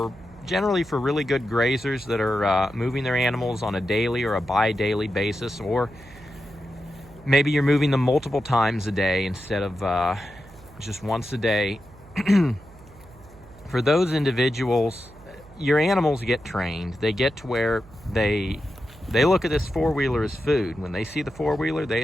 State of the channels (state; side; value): noise; right; hum, 22 dB below the sound